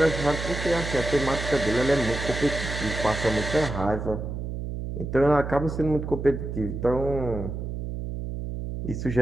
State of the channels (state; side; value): noise; right; hum, 5 dB below the sound